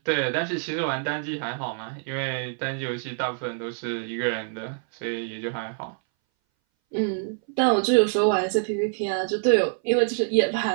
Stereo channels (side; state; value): left; silent; 60 dB below the other